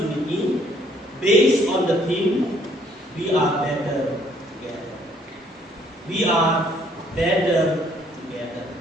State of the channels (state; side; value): normal; both; correlation 0.64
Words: based on the theme, we are better together. We are better together.